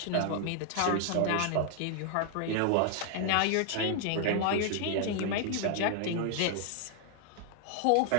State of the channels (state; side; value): different; both; correlation 0.00